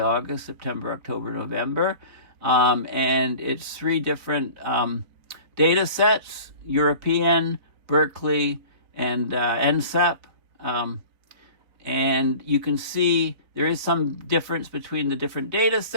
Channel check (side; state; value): left; late; 4.0 ms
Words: August, September, October, November. And it's 3 different data sets: European, Berkeley, and NCEP. And you can see there is some difference between the different data